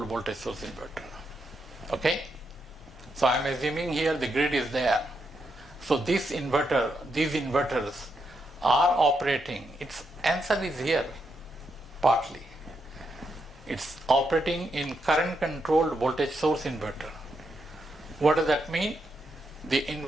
voltage source inverter. Okay? So I am assuming here the grid is there. So these inverters are operating. Its answer is here, partly. It's operating in current controlled voltage source inverter. What does that mean? The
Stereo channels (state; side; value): normal; both; correlation 0.81